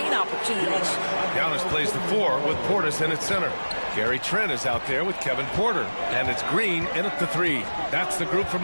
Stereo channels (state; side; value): inverted; both; correlation -1.00